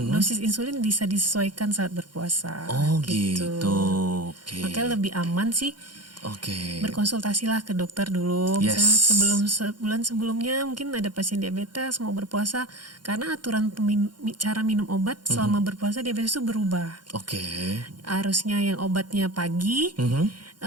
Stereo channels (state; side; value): late; left; 0.71 ms